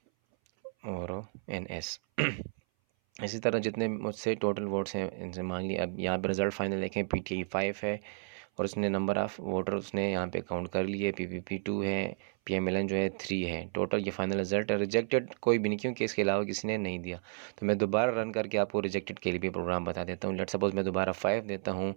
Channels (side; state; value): left; silent; 56 dB below the other